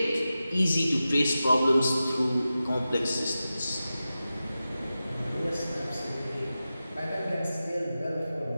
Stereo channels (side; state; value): both; inverted; correlation -0.93